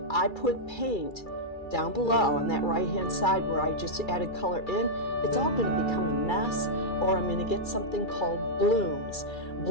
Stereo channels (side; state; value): right; late; 2.3 ms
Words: I put paint down below on that right hand side where I just added color in, it's all going to become a mess, or I'm going to get something called blooms.